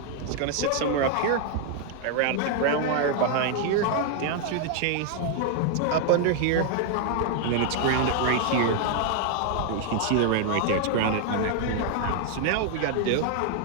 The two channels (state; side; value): different; both; correlation 0.00